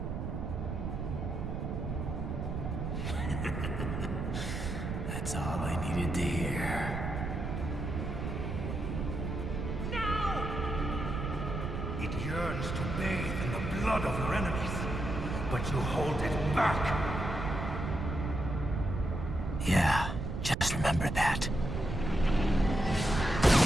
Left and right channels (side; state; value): right; noise; rumble, 3 dB below the sound